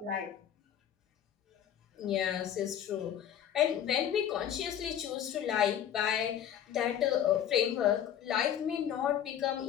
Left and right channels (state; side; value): quieter; right; 10.0 dB